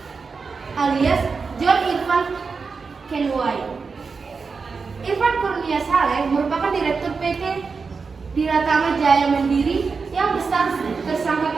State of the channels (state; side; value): quieter; left; 4.9 dB